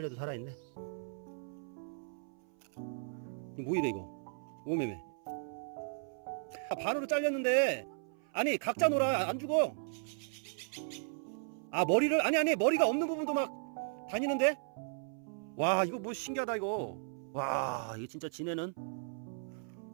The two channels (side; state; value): left; silent; 54 dB below the other